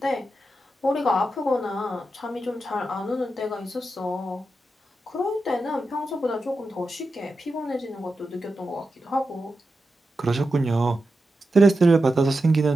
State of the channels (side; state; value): both; normal; correlation 0.89